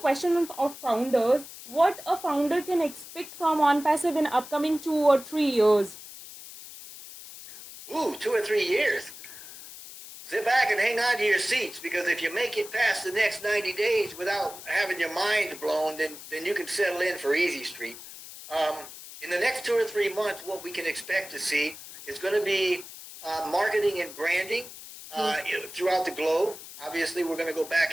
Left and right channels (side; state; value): left; noise; hiss, 14 dB below the sound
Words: of founders, what a founder can expect from ONPASSIVE in upcoming 2 or 3 years? 2 or 3 years. Sit back and hang on to your seats, because if you make it past the next 90 days without having your mind blown, then you can settle in for Easy Street. In the next 2 or 3 months, what we can expect to see is going to be marketing and branding throughout the globe. Obviously, we're going to go